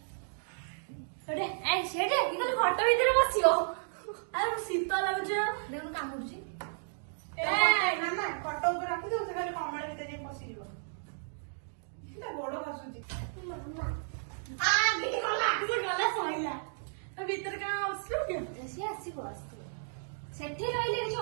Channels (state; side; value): silent; left; digital silence